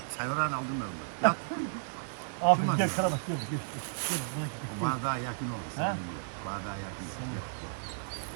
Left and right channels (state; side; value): silent; left; digital silence